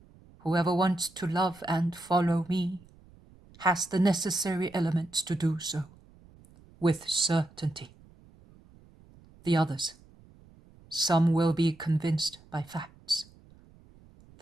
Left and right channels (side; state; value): right; noise; rumble, 26 dB below the sound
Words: whoever wants to love and follow me has the necessary elements to do so, with certainty. The others, some will be convinced by facts.